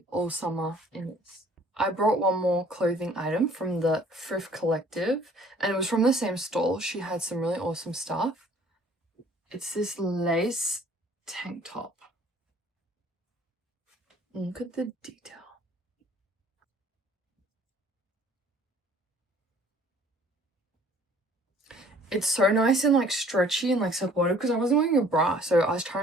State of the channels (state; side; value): normal; both; correlation 0.55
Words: all summer in this. I brought one more clothing item from the Thrift Collective, and it was from the same stall. She had some really awesome stuff. It's this lace tank top. Look at the detail. It's so nice and like stretchy and like supportive because I wasn't wearing a bra, so I was